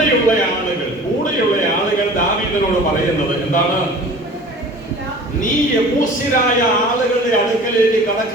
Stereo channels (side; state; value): both; normal; correlation 0.43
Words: ആളുകൾ ദാവീദിനോട് പറയുന്നത് എന്താണ്? നീ യെബൂസ്യരായ ആളുകളുടെ അടുക്കലേക്ക്